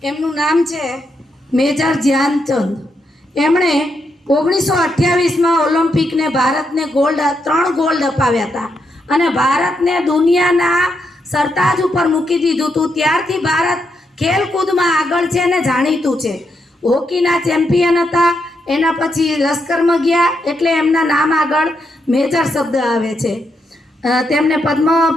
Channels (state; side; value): normal; both; correlation 0.81